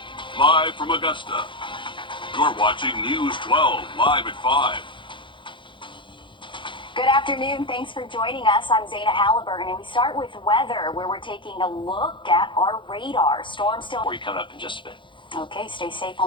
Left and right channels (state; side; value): late; right; 0.24 ms